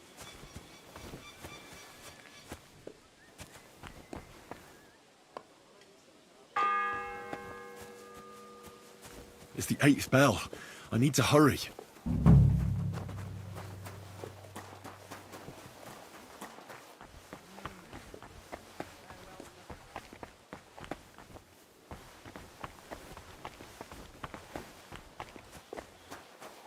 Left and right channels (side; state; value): both; identical; correlation 1.00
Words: It's the 8th bell. I need to hurry.